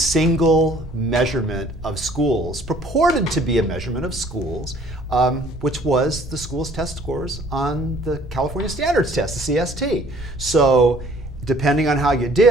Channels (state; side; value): noise; right; rumble, 14 dB below the sound